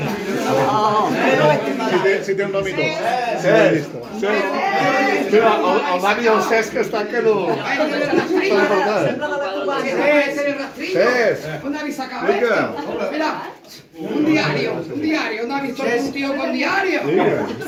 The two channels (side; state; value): both; identical; correlation 1.00